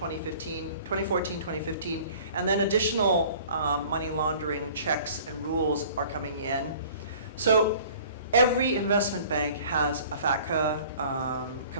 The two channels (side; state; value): both; inverted; correlation -0.49